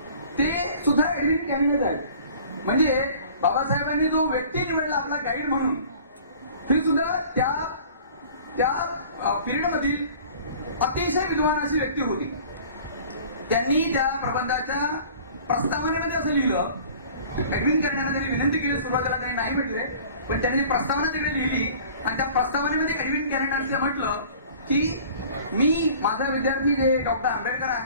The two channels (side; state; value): both; inverted; correlation -0.47